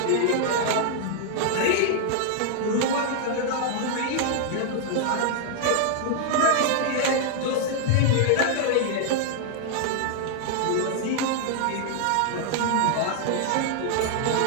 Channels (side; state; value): both; different; correlation 0.00